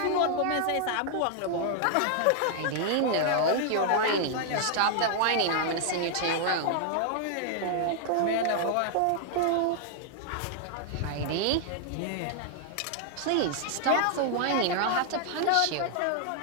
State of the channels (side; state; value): both; different; correlation 0.00